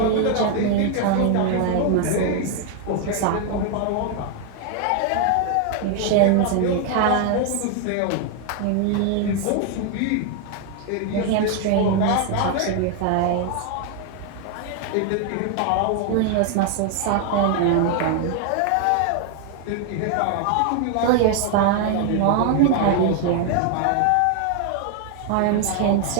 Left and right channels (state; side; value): different; both; correlation 0.00